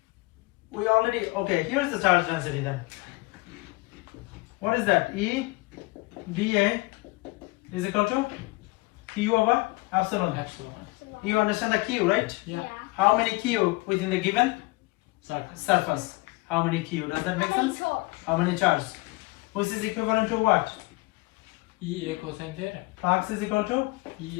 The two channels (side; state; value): right; quieter; 24.0 dB